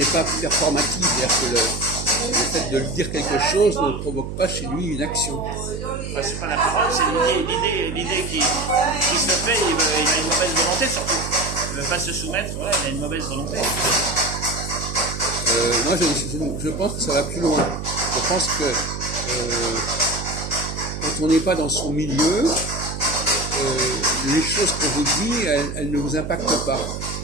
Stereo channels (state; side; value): noise; right; hum, 7 dB below the sound